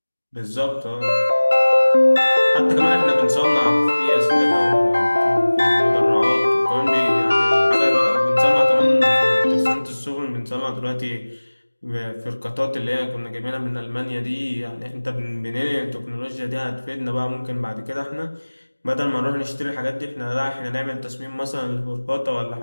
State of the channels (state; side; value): inverted; both; correlation -1.00